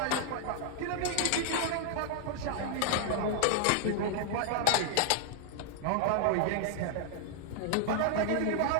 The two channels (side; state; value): both; different; correlation 0.00